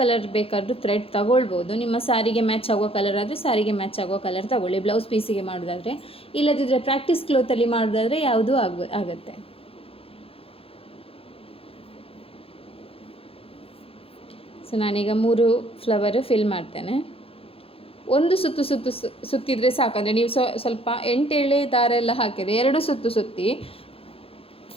ಬೇಕಾದರೂ ಥ್ರೆಡ್ ತಗೊಳ್ಬೋದು. ನಿಮ್ಮ ಸಾರಿಗೆ ಮ್ಯಾಚ್ ಆಗೋ ಕಲರ್ ಆದರೆ ಸಾರಿಗೆ ಮ್ಯಾಚ್ ಆಗೋ ಕಲರ್ ತಗೊಳ್ಳಿ, ಬ್ಲೌಸ್ ಪೀಸಿಗೆ ಮಾಡೋದಾದರೆ. ಇಲ್ಲದಿದ್ದರೆ ಪ್ರಾಕ್ಟೀಸ್ ಕ್ಲೋತಲ್ಲಿ ಮಾಡೋದಾದರೆ ಯಾವುದೂ ಆಗುತ್ತೆ. ಸೊ ನಾನೀಗ 3 ಫ್ಲವರ್ ಫಿಲ್ ಮಾಡ್ತೇನೆ. ಒಂದು ಸುತ್ತಿದ್ರೆ ಸಾಕಂದರೆ ನೀವು ಸ್ವಲ್ಪ 8 ಎಳೆ ದಾರ ಎಲ್ಲ ಹಾಕಿದರೆ 2 ಸುತ್ತಿ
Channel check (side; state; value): right; late; 0.27 ms